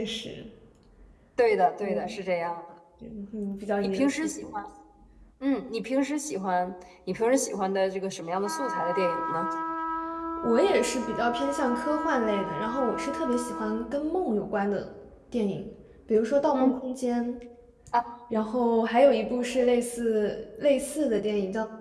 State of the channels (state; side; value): identical; both; correlation 1.00